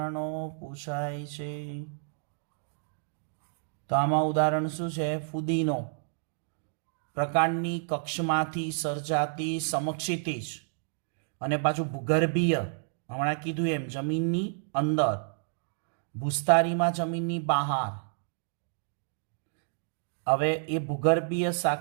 પૂછાય છે. તો આમાં ઉદાહરણ શું છે? ફુદીનો. પ્રકાંડની કક્ષમાંથી સર્જાતી સમક્ષિતિજ અને પાછું ભૂગર્ભીય, હમણાં કીધું એમ જમીનની અંદર, ભૂસ્તારીમાં જમીનની બહાર. હવે એ ભૂગર્ભીય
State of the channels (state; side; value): silent; left; digital silence